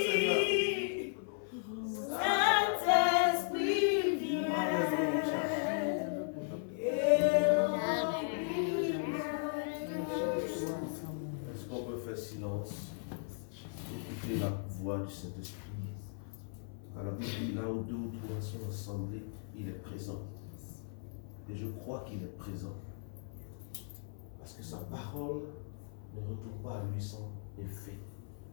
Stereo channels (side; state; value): right; silent; 53 dB below the other